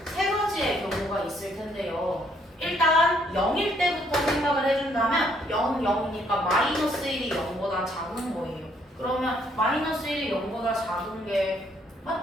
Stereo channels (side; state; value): both; normal; correlation 0.68